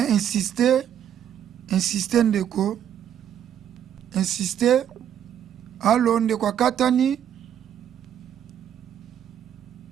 insister ndeko insister. Allo ndeko katani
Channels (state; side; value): quieter; left; 9.9 dB